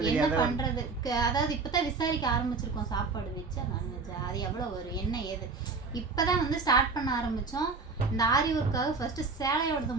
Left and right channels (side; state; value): left; quieter; 4.3 dB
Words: அதாவது இப்போ தான் விசாரிக்க ஆரம்பிச்சிருக்கோம். சாப்பாடு வச்சா நான்வெஜ் அது எவ்வளோ வரும் என்ன ஏது இப்போ தான் வந்து ஸ்டார்ட் பண்ண ஆரம்பித்தோம். இந்த ஆரி ஒர்க்காக ஃபஸ்ட்டு சேலையோடதை